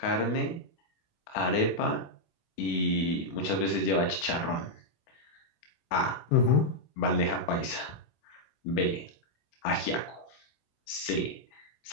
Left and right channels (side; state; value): right; late; 25 ms